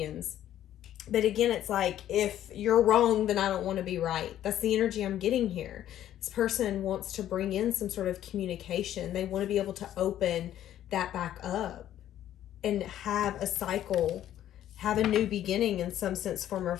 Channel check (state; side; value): quieter; right; 11.8 dB